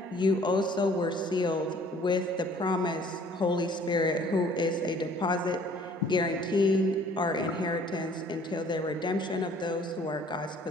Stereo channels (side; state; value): both; normal; correlation 0.56